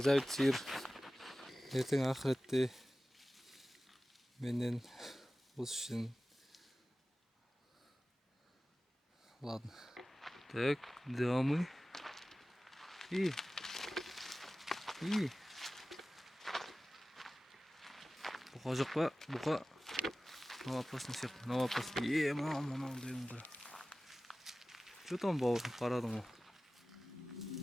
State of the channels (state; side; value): normal; both; correlation 0.96